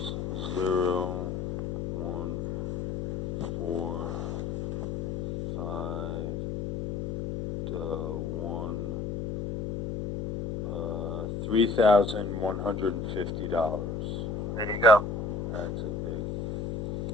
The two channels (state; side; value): noise; left; hum, 3 dB below the sound